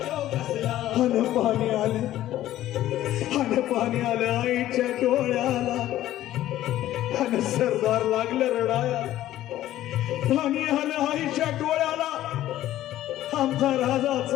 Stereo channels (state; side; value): quieter; right; 13.7 dB